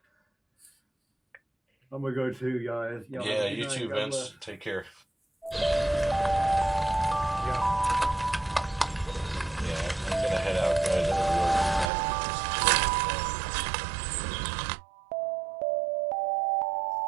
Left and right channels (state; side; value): drops out; left; at 11.9 s